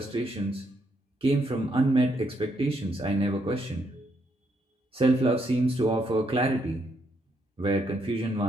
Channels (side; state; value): both; normal; correlation 0.76